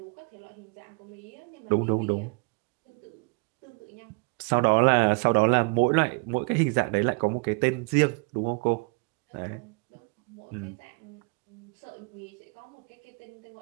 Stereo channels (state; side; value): quieter; left; 31.8 dB